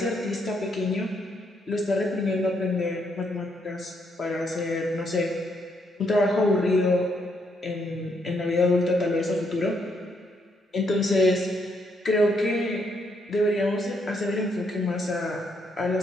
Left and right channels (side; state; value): both; normal; correlation 0.75